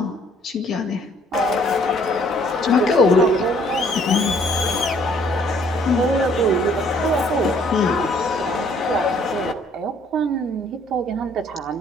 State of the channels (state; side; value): normal; both; correlation 0.61